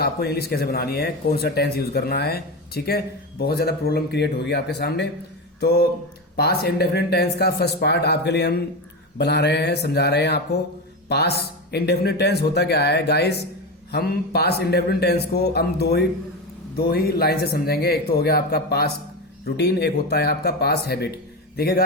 इंग्लिश कैसे बनानी है, कौन सा टेंस यूज करना है। ठीक है, बहुत ज्यादा प्रॉब्लम क्रिएट होगी आपके सामने। तो पास्ट इंडेफिनिट टेंस का फर्स्ट पार्ट आपके लिए हम बना रहे हैं, समझा रहे हैं आपको। पास्ट इंडेफिनिट टेंस होता क्या है गाइस। हम पास्ट इंडेफिनिट टेंस को हम दो ही लाइन से समझेंगे। एक तो हो गया आपका पास्ट रूटीन, एक होता है आपका पास्ट हैबिट। देखिए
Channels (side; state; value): both; normal; correlation 0.19